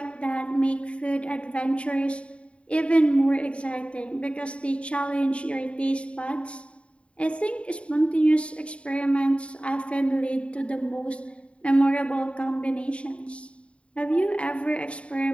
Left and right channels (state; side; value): late; right; 0.061 ms